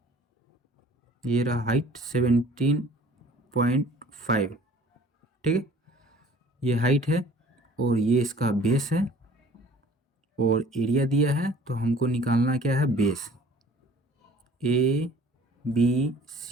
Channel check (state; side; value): normal; both; correlation 0.50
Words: ये रहा हाइट 17.5। ठीक है, ये हाइट है और ये इसका बेस है, और एरिया दिया है, तो हमको निकालना क्या है, base. A B